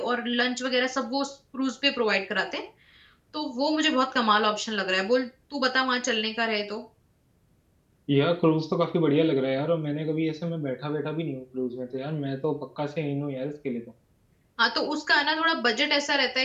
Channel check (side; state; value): both; identical; correlation 1.00